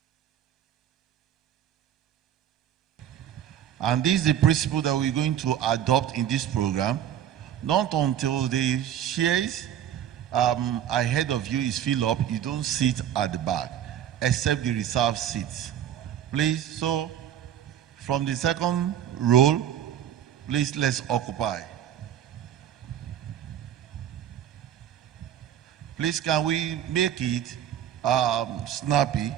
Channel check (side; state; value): left; quieter; 10.6 dB